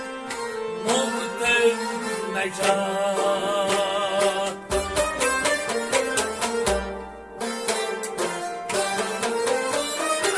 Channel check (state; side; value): identical; both; correlation 1.00